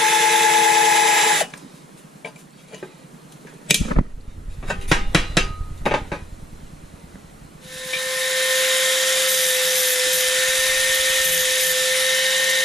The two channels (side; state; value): both; normal; correlation 0.66